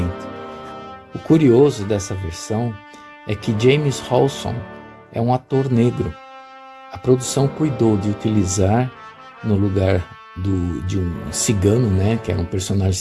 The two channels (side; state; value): both; identical; correlation 1.00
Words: O curioso dessa versão é que James Hawson é um ator negro. A produção cuidou de utilizar, no lugar de um cigano, que era um personagem